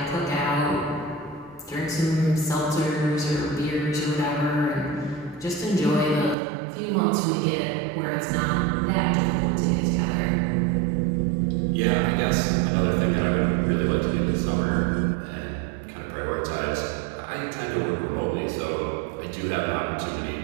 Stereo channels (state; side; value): drops out; left; at 6.4 s